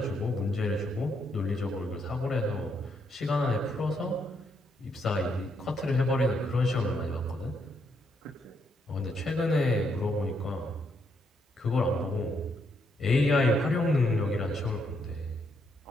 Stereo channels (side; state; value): both; normal; correlation 0.76